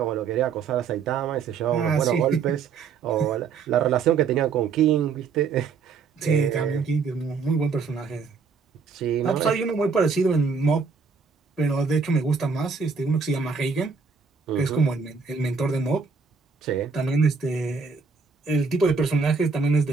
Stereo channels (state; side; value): quieter; left; 5.3 dB